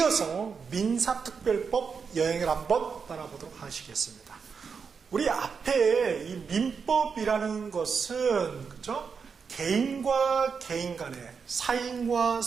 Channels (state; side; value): quieter; left; 5.8 dB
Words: 민사특별법 여행을 한번 따라보도록 하시겠습니다. 우리 앞에 이 민법이라는 것은, 그죠? 개인과 개인 간의, 사인과